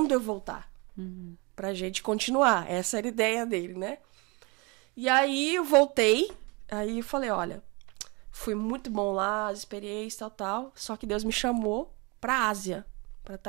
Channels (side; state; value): left; quieter; 28.6 dB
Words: eu voltar pra gente continuar. Essa era a ideia dele, né? E aí eu voltei, aí eu falei, olha, foi muito bom lá, as experiências, tal, só que Deus me chamou pra Ásia, pra